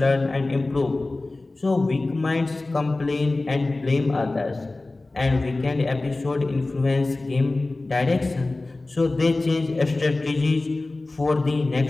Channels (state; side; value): quieter; right; 3.1 dB